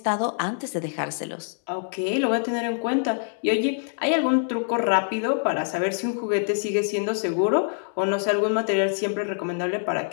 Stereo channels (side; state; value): right; silent; digital silence